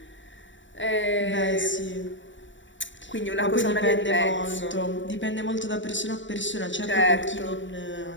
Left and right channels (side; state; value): right; late; 0.54 ms